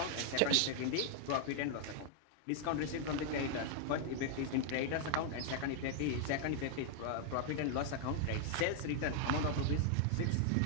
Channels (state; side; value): different; both; correlation 0.00